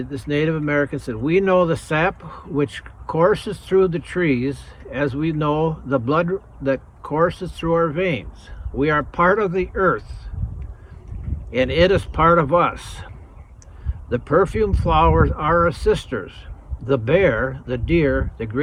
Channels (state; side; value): identical; both; correlation 1.00